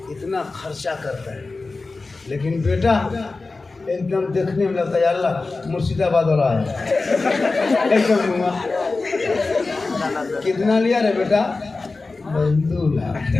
इतना खर्चा करता है, लेकिन बेटा एकदम देखने में लगता है अल्लाह मुर्शिदाबाद वाला है एकदम। कितना लिया रे बेटा? 2 लाख।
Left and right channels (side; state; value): right; quieter; 3.7 dB